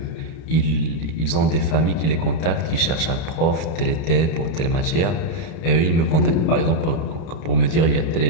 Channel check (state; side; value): late; right; 31 ms